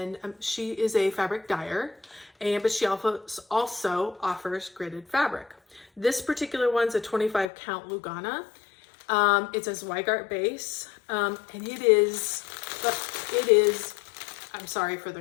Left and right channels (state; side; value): drops out; right; at 7.5 s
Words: she is a fabric dyer, but she also offers gridded fabric. This particular one's a 25 count Lugana. It's a Zweigart base, and it is, I'm sorry for